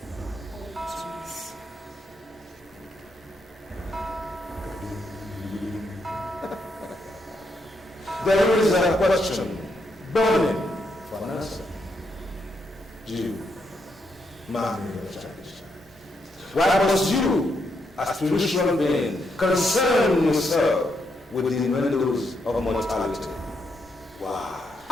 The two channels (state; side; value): normal; both; correlation 0.79